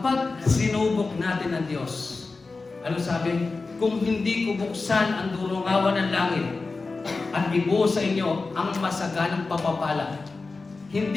sinubok natin ang Diyos, ano sabi? Kung hindi ko buksan ang durungawan ng langit at ibuhos sa inyo ang masaganang papapala,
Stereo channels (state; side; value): quieter; right; 3.9 dB